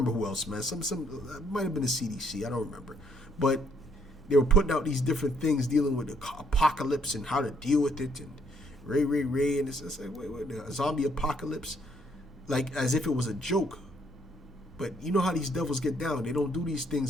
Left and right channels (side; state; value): both; normal; correlation 0.69